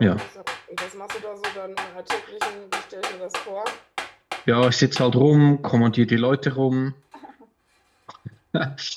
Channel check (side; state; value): both; identical; correlation 1.00